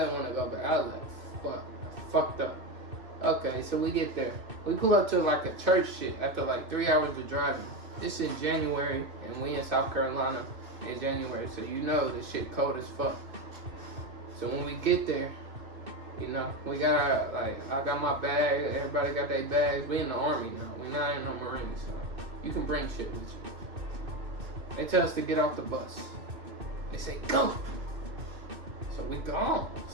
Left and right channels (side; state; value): left; late; 2.7 ms